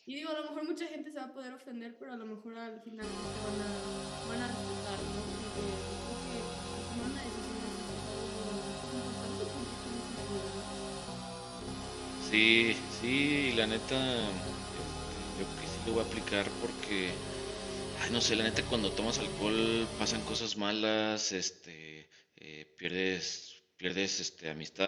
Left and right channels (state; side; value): identical; both; correlation 1.00